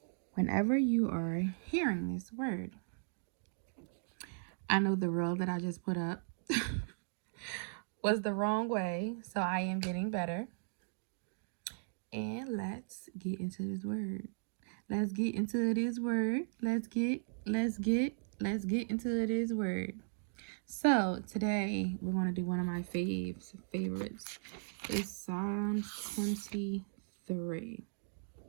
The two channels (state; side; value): silent; left; digital silence